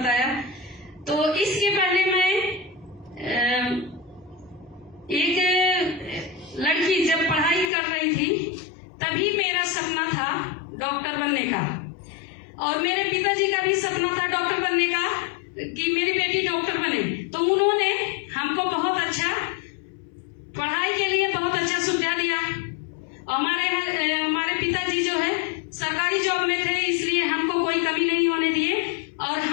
तो इसके पहले मैं एक लड़की जब पढ़ाई कर रही थी तभी मेरा सपना था डॉक्टर बनने का, और मेरे पिताजी का भी सपना था डॉक्टर बनने का कि मेरी बेटी डॉक्टर बने। तो उन्होंने हमको बहुत अच्छा पढ़ाई के लिए बहुत अच्छा सुविधा दिया। हमारे पिताजी जो है सरकारी जॉब में थे, इसलिए हमको कोई कमी नहीं होने दिए और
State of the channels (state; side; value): drops out; right; at 7.7 s